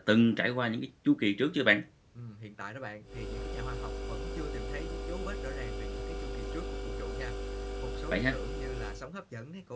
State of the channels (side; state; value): both; identical; correlation 1.00